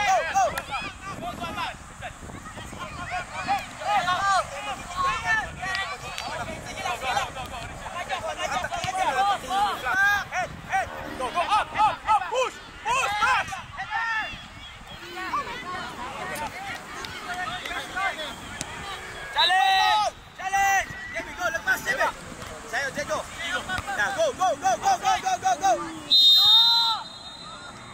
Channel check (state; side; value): identical; both; correlation 1.00